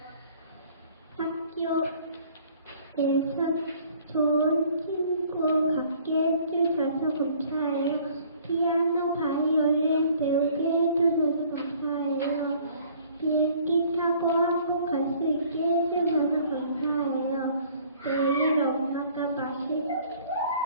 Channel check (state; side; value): inverted; both; correlation -0.56